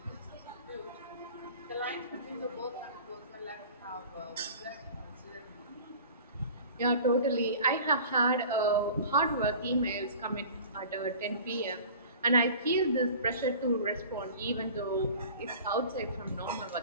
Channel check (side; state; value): both; inverted; correlation -0.41